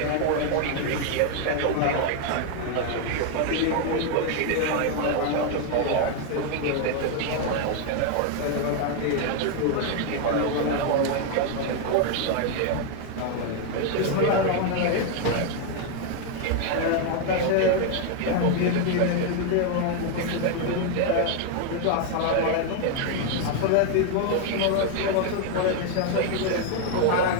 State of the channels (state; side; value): different; both; correlation 0.01